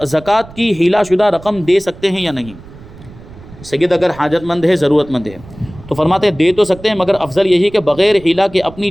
کی ہیلا شدہ رقم دے سکتے ہیں یا نہیں؟ سید اگر حاجت مند ہے، ضرورت مند ہے، تو فرماتے ہیں دے تو سکتے ہیں، مگر افضل یہی کہ بغیر ہیلا کے اپنی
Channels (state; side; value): noise; right; rumble, 19 dB below the sound